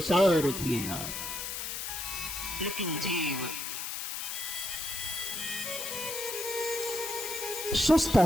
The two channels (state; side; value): noise; left; hiss, 4 dB below the sound